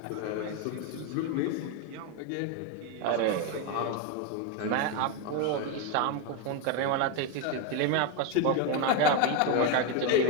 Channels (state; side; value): different; both; correlation 0.02